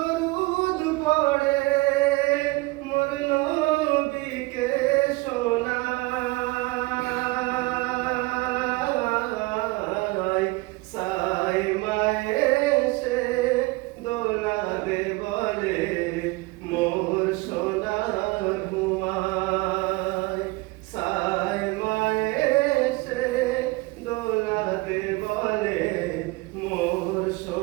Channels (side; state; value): left; quieter; 22.6 dB